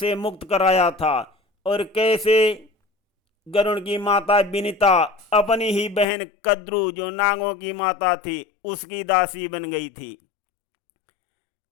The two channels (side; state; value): right; drops out; at 6.1 s